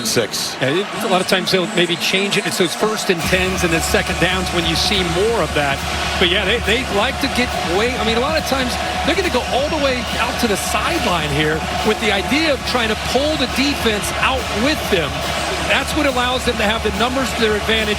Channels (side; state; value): both; identical; correlation 1.00